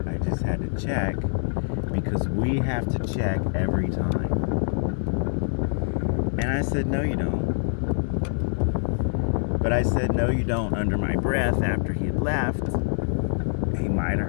I just had to check because we have to check every time. And I said, no, you don't. But I said, no, you don't, under my breath after he had left. He might have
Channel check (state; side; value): silent; right; digital silence